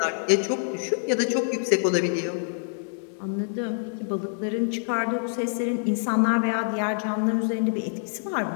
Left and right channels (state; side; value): silent; right; 61 dB below the other